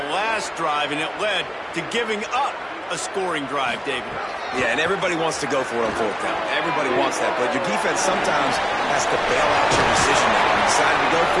last drive, and it led to giving up a scoring drive, David. Yeah, and everybody wants to go for it on 4th down. Everybody wants that, but your defense sometimes has to bail out your decision making. You decided to go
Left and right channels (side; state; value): both; identical; correlation 1.00